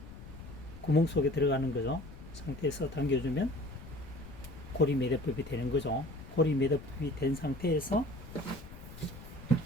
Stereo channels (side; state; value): left; noise; rumble, 15 dB below the sound